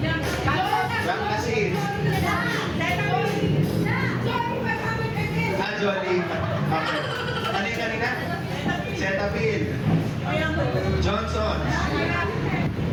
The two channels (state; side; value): identical; both; correlation 1.00